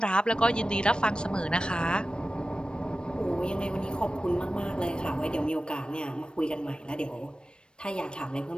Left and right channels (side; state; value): right; late; 0.053 ms